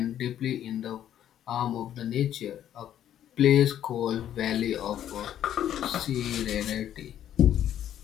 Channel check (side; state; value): right; quieter; 10.8 dB